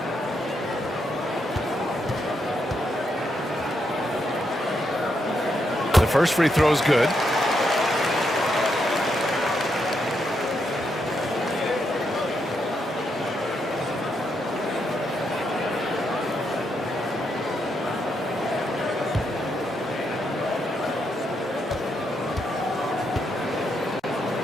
The first free throw is good.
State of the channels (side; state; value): both; normal; correlation 0.80